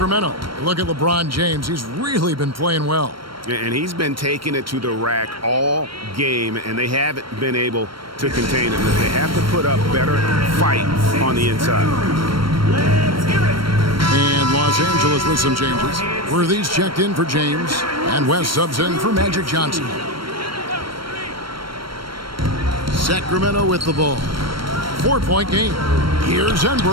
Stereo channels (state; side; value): late; left; 0.74 ms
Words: Look at LeBron James. He's really been playing well. And he's been taking it to the rack all game, and they haven't been able to contain it. They have to put up better fight on the inside. And Los Angeles with some changes. Worthy's checked in for James, and West subs in for Magic Johnson. Sacramento with the ball. 4-point game. Here's